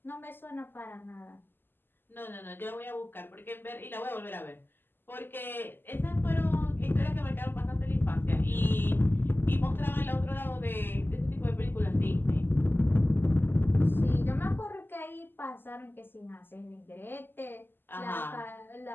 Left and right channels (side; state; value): right; late; 0.097 ms